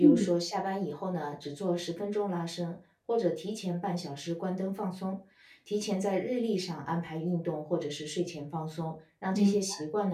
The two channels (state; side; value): identical; both; correlation 1.00